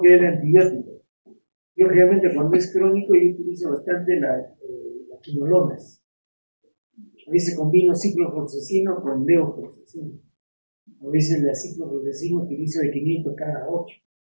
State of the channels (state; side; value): inverted; both; correlation -1.00